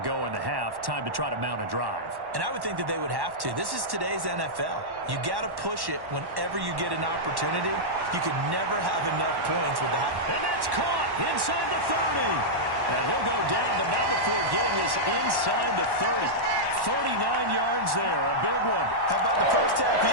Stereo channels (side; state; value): left; late; 1.1 ms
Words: in the half. Time to try to mount a drive. And I would think that they would have to. This is today's NFL. You got to push it whenever you get an opportunity. You can never have enough points with the high. And that's caught inside the 30. And he'll go down, but not before getting this inside the 30. 39 yards there, a big one. How about the first half